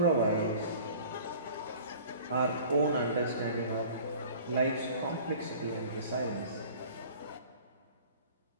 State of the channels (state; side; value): inverted; both; correlation -0.46